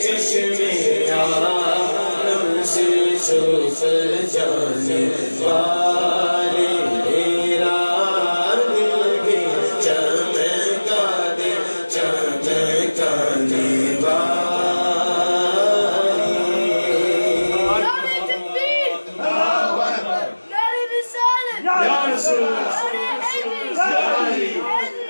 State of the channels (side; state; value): both; inverted; correlation -1.00